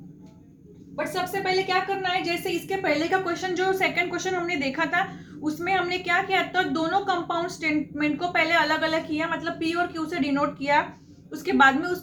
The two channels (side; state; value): both; identical; correlation 1.00